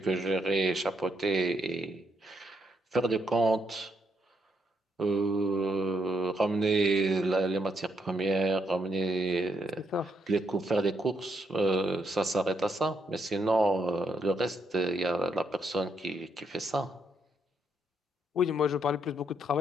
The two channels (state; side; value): normal; both; correlation 0.77